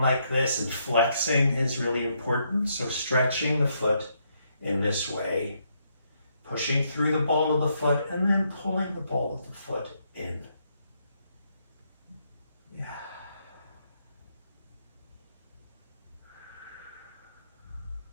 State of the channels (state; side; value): inverted; both; correlation -0.75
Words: like this and flexing is really important. So stretching the foot in this way, pushing through the ball of the foot, and then pulling the ball of the foot in.